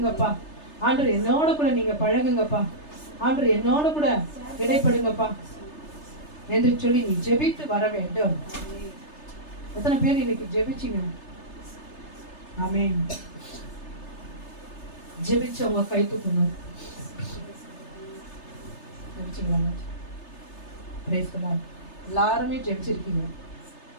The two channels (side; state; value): right; late; 3.3 ms